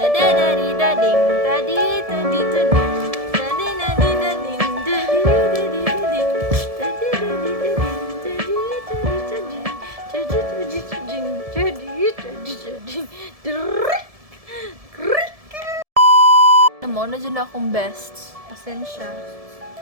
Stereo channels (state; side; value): late; left; 1.7 ms